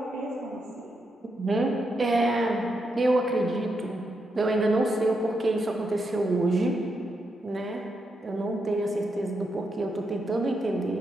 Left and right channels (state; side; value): normal; both; correlation 0.83